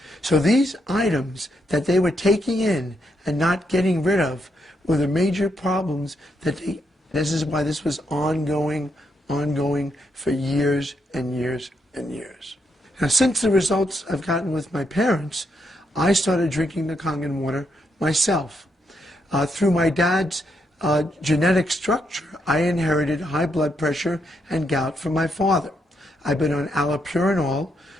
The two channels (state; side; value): normal; both; correlation 0.79